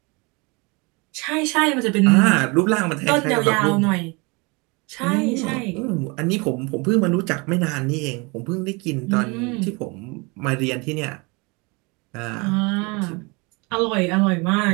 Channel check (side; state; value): left; quieter; 28.3 dB